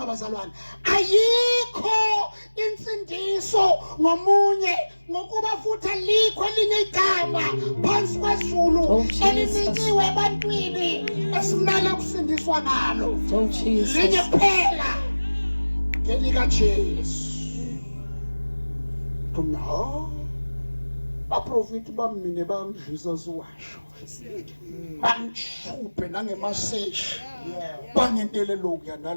bazalwane. Ayikho insindiso ngomunye ngokuba futhi alikho elinye igama phansi kwezulu elinikiwe ebantwini esimele ukusindiswa ngalo. Oh Jesus. Linye kuphela ngelikaJesu. Tuna abaprofeti bamine bamdlisa siwasho. Bamchuphe nangemaseshi. Bangentele lokya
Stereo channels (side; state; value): both; inverted; correlation -1.00